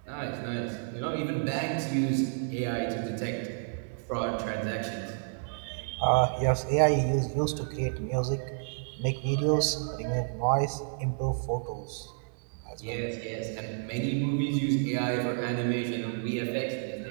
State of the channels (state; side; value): silent; left; digital silence